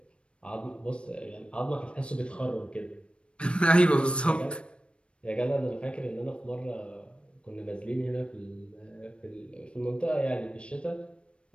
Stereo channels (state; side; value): late; right; 0.058 ms